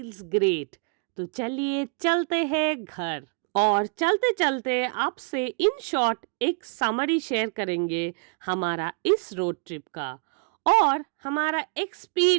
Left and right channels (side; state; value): left; quieter; 37.1 dB